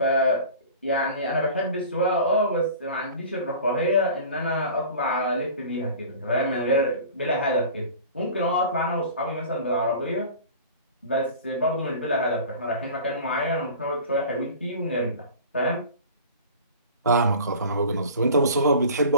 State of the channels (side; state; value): both; inverted; correlation -0.40